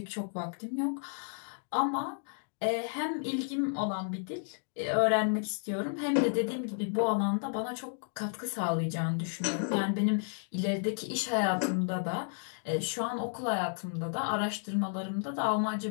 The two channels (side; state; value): right; silent; digital silence